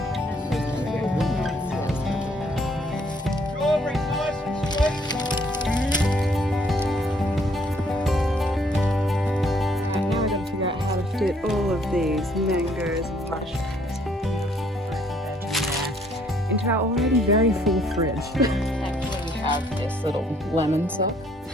Get all of these mangoes and mushrooms into our already very full fridge. Thankfully we have this little lemon sauce.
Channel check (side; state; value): both; normal; correlation 0.65